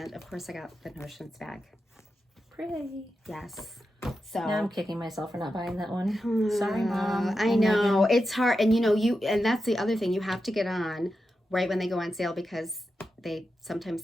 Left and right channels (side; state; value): both; normal; correlation 0.89